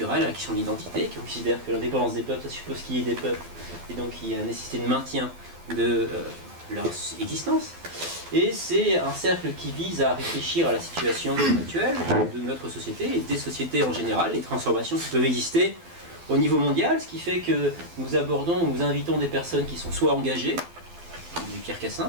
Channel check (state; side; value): late; left; 12 ms